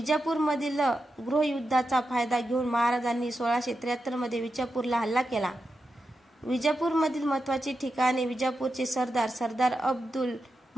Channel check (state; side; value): normal; both; correlation 0.89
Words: गृहयुद्धाचा फायदा घेऊन महाराजांनी 1673 मध्ये विजापूरला हल्ला केला. विजापूरमधील महत्त्वाची ठिकाणे. विजापूरचे सरदार अब्दुल